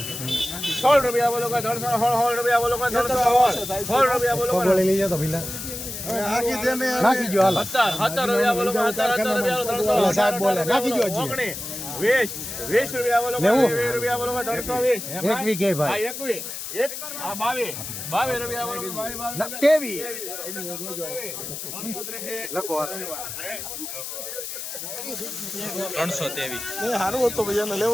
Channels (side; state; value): left; noise; hiss, 7 dB below the sound